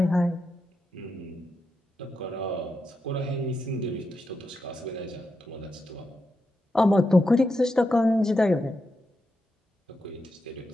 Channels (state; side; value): normal; both; correlation 0.86